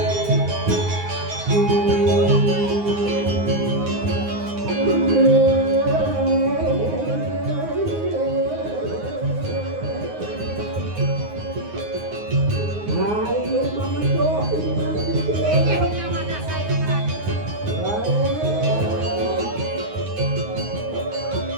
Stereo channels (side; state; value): left; late; 9.6 ms